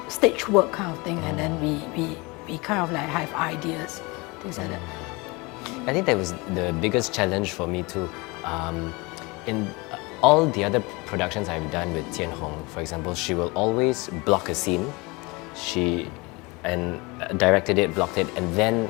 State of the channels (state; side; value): quieter; right; 25.7 dB